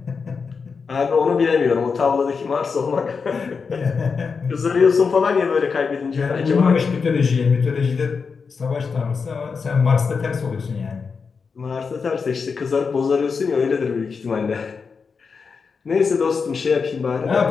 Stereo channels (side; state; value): right; quieter; 5.3 dB